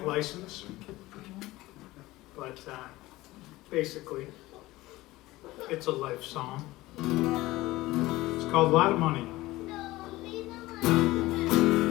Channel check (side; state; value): right; quieter; 18.5 dB